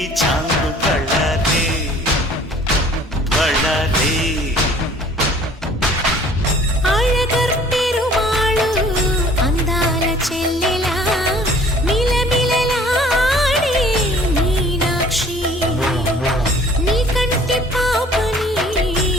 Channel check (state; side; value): normal; both; correlation 0.52